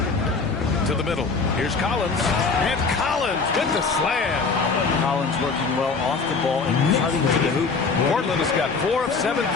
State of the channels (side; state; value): right; quieter; 4.6 dB